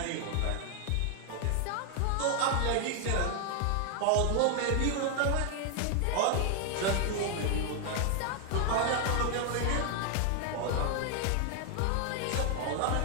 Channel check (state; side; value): different; both; correlation 0.00